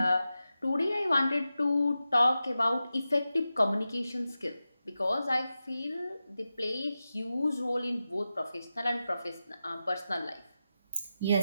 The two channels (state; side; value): inverted; both; correlation -0.92